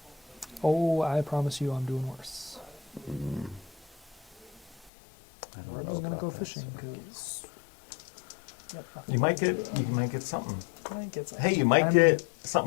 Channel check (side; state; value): right; drops out; at 4.9 s